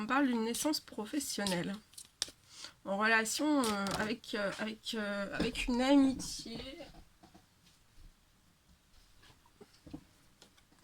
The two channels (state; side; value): identical; both; correlation 1.00